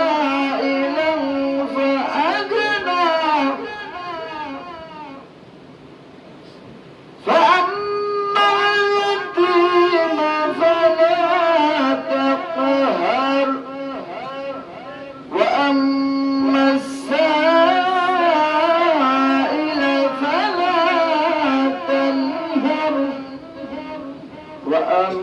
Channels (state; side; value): identical; both; correlation 1.00